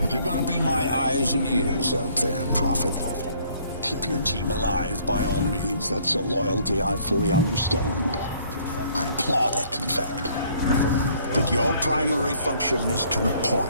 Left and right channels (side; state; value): both; inverted; correlation -0.61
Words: You're gonna be my eyes and ears out there, Prophet. Keep your team alive by all means. That's a loyalty I fully understand. I applaud it, in fact. But your primary function is to